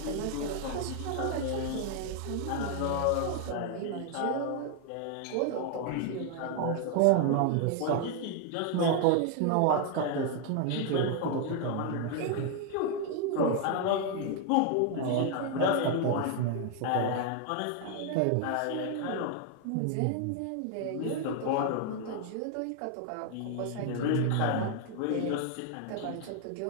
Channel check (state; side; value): different; both; correlation 0.00